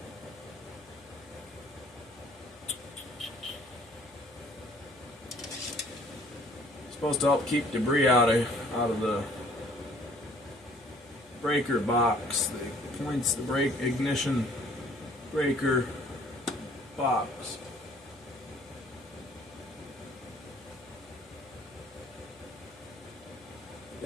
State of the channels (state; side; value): noise; left; hum, 29 dB below the sound